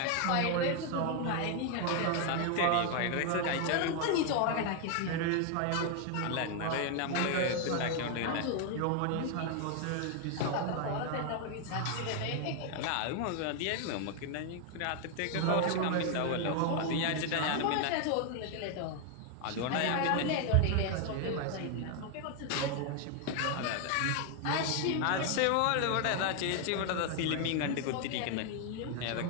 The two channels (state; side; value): different; both; correlation 0.01